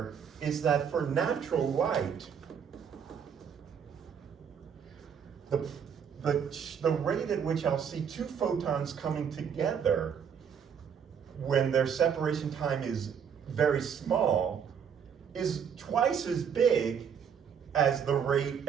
is that for natural light, the rate at which I'll see two photons coming together when their separation time is very small is twice as big as the rate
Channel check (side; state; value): left; quieter; 7.5 dB